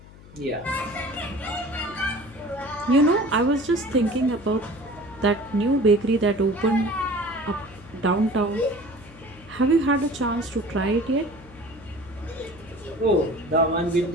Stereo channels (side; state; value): left; noise; hum, 20 dB below the sound